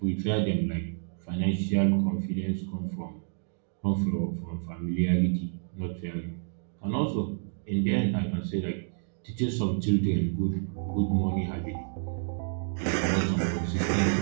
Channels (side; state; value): left; silent; digital silence